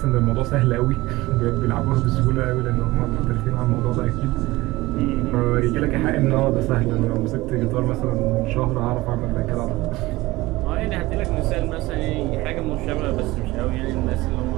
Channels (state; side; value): quieter; left; 19.6 dB